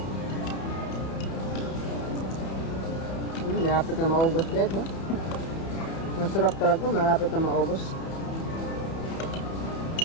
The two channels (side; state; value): right; late; 31 ms